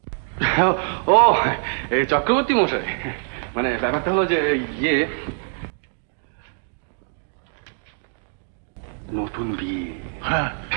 ও, এই চক্রবর্তী মশাই, মানে ব্যাপারটা হলো যে ইয়ে, নতুন বিয়ে। হ্যাঁ,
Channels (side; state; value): left; silent; 59 dB below the other